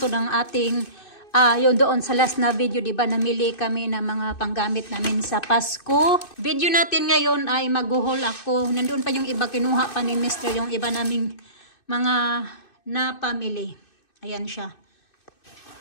to ng ating, yung doon sa last na video, diba, namili kami ng mga panggamit namin sa Pasko. Video natin ngayon ay mag-haul ako. Nandoon pa yung iba, kinuha pa ni Mr. yung iba naming mga napamili. Ayan siya.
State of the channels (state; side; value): late; right; 2.6 ms